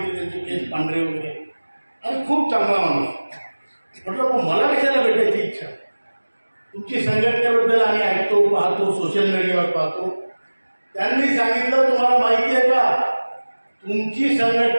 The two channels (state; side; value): inverted; both; correlation -1.00